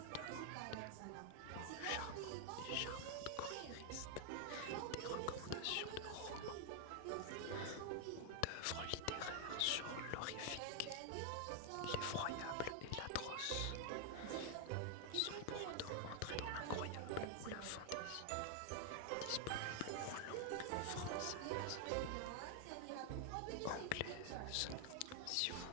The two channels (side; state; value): both; different; correlation 0.00